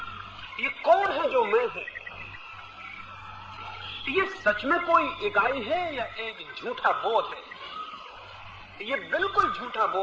ये कौन है जो मैं है? ये सच में कोई इकाई है या एक झूठा बोध है? ये बिल्कुल झूठा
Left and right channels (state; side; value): identical; both; correlation 1.00